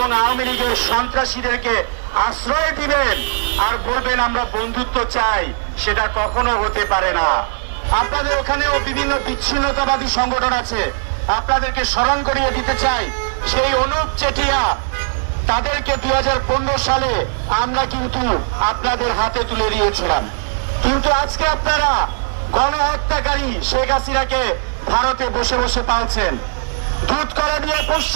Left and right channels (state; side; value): silent; left; digital silence